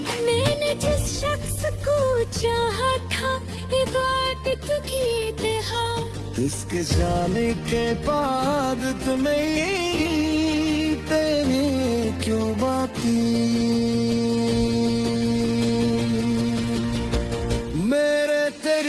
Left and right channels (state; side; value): identical; both; correlation 1.00